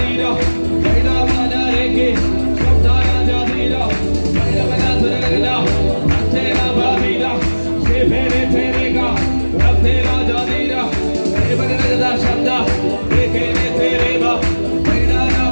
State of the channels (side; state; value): both; inverted; correlation -1.00